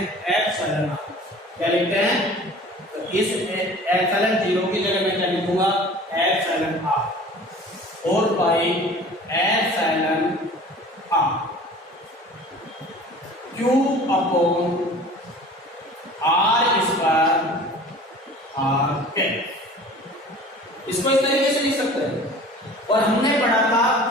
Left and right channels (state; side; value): normal; both; correlation 0.44